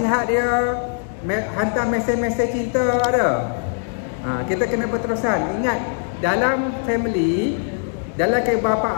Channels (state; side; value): silent; right; 59 dB below the other